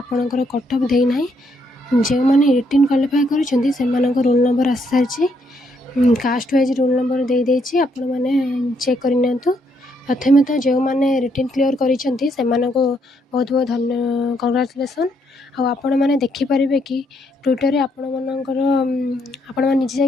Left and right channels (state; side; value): normal; both; correlation 0.74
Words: ଆପଣଙ୍କର କଟ୍ଅଫ୍ ଦେଇନାହିଁ। ଯେଉଁମାନେ ରିଟିନ୍ କ୍ୱାଲିଫାଏ କରିଛନ୍ତି ସେମାନଙ୍କ ରୋଲ୍ ନମ୍ବର ଆସିସାରିଛି। କାଷ୍ଟ ୱାଇଜ୍ ରୋଲ୍ ନମ୍ବର ଦେଇଦେଇଛି, ଆପଣମାନେ ଚେକ୍ କରିନିଅନ୍ତୁ। ପ୍ରଥମେ ତ ଯେଉଁମାନେ ରିଟିନ୍ କ୍ଲିୟର୍ କରିଛନ୍ତି ସେମାନଙ୍କୁ ବହୁତ ବହୁତ କଂଗ୍ରାଚୁଲେସନ୍। ଆଉ ଆପଣମାନେ ଦେଖିପାରିବେ କି ଟ୍ୱିଟର୍ରେ ଆପଣମାନେ ନିଜେ